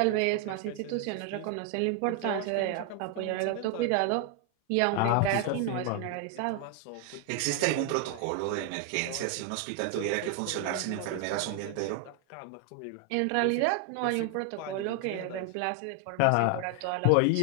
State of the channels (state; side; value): different; both; correlation 0.00